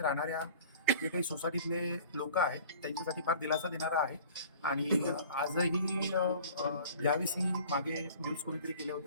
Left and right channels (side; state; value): both; inverted; correlation -0.46